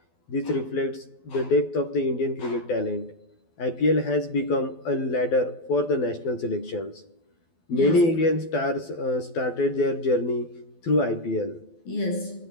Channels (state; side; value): late; right; 12 ms